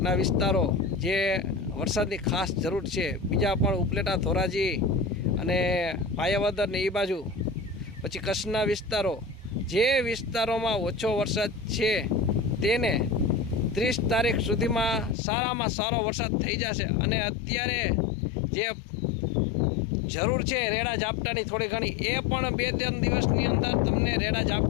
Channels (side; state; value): right; drops out; at 15.2 s